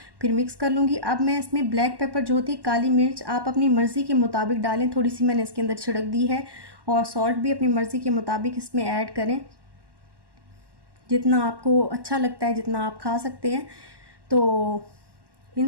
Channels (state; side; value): late; left; 1.1 ms